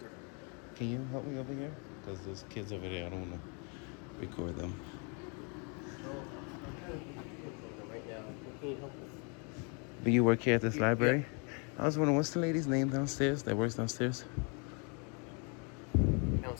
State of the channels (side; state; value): right; quieter; 35.4 dB